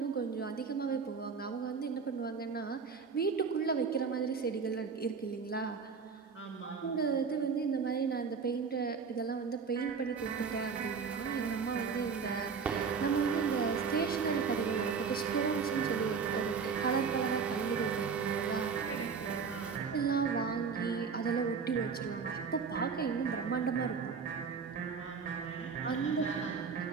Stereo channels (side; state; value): left; quieter; 5.7 dB